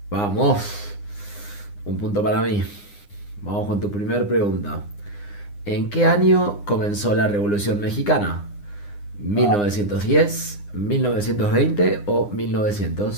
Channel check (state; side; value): late; right; 9.8 ms